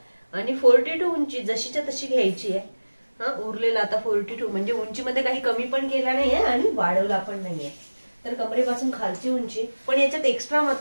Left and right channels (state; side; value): inverted; both; correlation -1.00